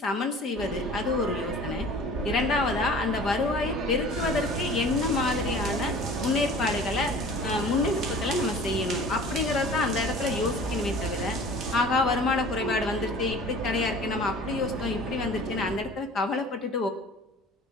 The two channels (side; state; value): both; normal; correlation 0.44